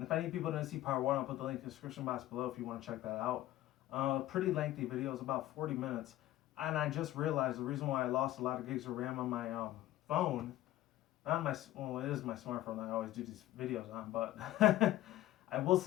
if any people didn't see part one, I'll put the link in the description box below if you want to check that out. Pretty lengthy video. It's about 40 minutes. And I just realized the reason why I lost a lot of gigs of RAM on my phone, not my, well, it is my smartphone that I always do these videos on, but I will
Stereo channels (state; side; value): quieter; right; 14.8 dB